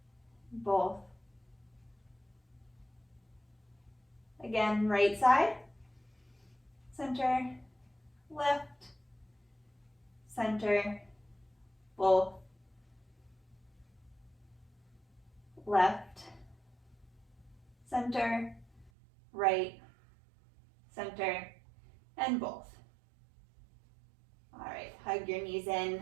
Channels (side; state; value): left; drops out; at 18.9 s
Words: Both. Again, right side. Center. Left. Center. Both. Left, center, right, center, and both. All right, hug your knees in.